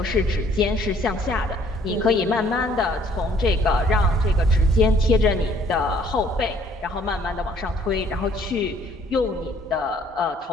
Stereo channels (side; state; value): both; normal; correlation 0.60